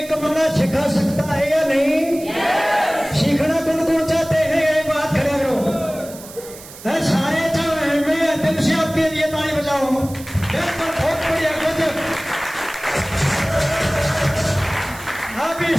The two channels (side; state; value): right; noise; hiss, 17 dB below the sound